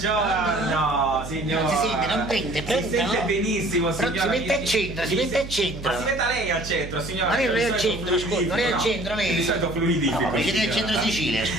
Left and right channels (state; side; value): noise; right; hum, 11 dB below the sound